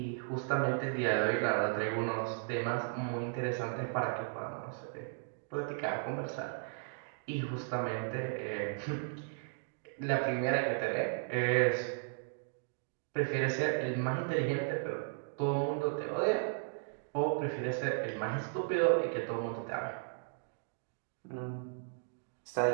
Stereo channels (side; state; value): left; silent; digital silence